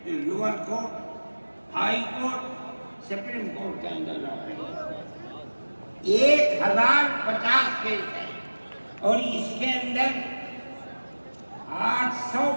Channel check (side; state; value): both; inverted; correlation -1.00